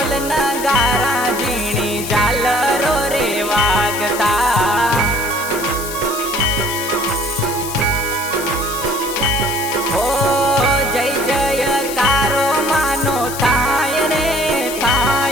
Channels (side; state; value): left; noise; hiss, 9 dB below the sound